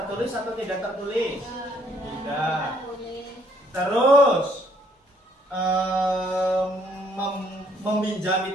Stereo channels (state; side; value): normal; both; correlation 0.65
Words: atau tidak tertulis? Tidak. Terus meminjami